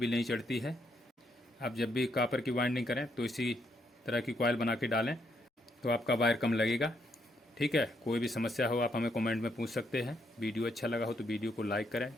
नहीं चढ़ती है। आप जब भी कॉपर की वाइंडिंग करें तो इसी तरह की कॉइल बना के डालें, तो आपका वायर कम लगेगा। ठीक है, कोई भी समस्या हो आप हमें कमेंट में पूछ सकते हैं। वीडियो अच्छा लगा हो तो वीडियो को लाइक करें।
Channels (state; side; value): normal; both; correlation 0.75